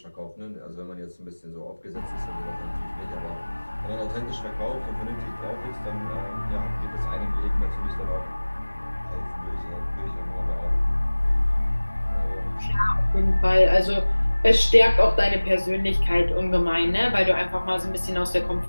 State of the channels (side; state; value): both; inverted; correlation -1.00